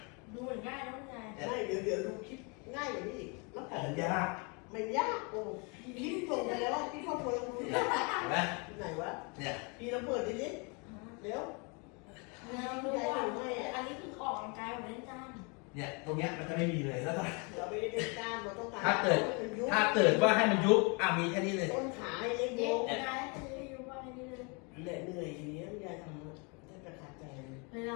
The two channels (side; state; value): right; quieter; 32.5 dB